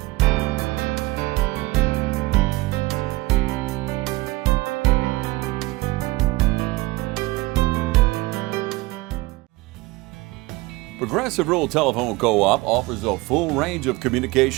Progressive Rural Telephone Co-op offers a full range of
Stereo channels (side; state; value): left; quieter; 20.6 dB